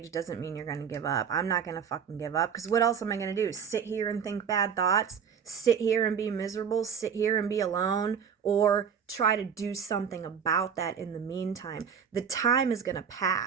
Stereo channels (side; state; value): left; quieter; 7.3 dB